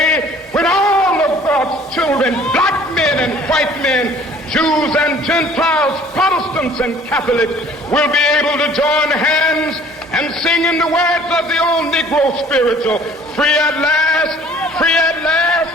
when all of God's children, black men and white men, Jews and Gentiles, Protestants and Catholics, will be able to join hands and sing in the words of the old Negro spiritual, free at last,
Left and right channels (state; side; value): normal; both; correlation 0.53